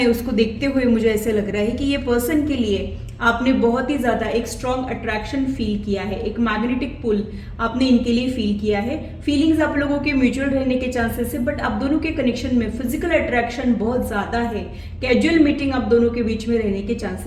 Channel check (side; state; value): both; identical; correlation 1.00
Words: उसको देखते हुए मुझे ऐसे लग रहा है कि ये पर्सन के लिए आपने बहुत ही ज्यादा एक स्ट्रॉन्ग अट्रैक्शन फील किया है, एक मैग्नेटिक पुल आपने इनके लिए फील किया है। फीलिंग्स आप लोगों के म्यूचुअल रहने के चांसेस है, बट आप दोनों के कनेक्शन में फिजिकल अट्रैक्शन बहुत ज्यादा है। कैजुअल मीटिंग आप दोनों के बीच में रहने के